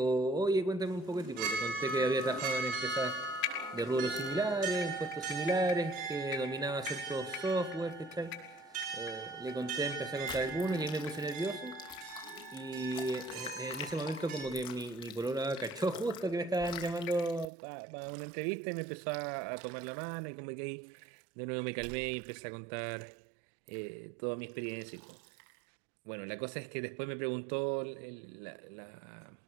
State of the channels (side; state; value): left; drops out; at 17.4 s